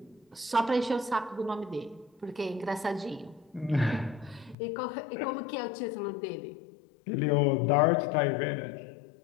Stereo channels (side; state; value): right; drops out; at 4.5 s